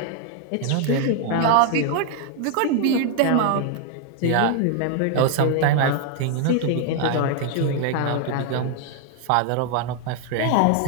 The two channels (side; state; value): both; different; correlation 0.00